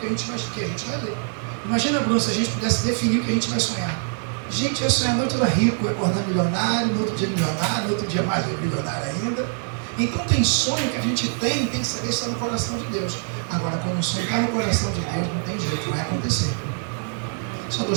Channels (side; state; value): left; silent; 60 dB below the other